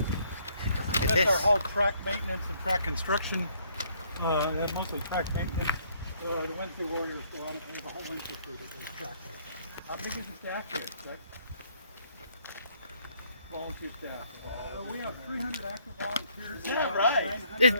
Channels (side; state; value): both; inverted; correlation -0.66